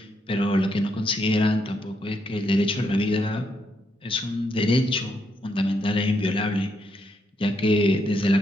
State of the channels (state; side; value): normal; both; correlation 0.78